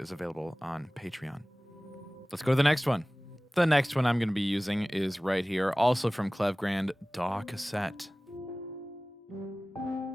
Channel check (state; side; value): normal; both; correlation 0.98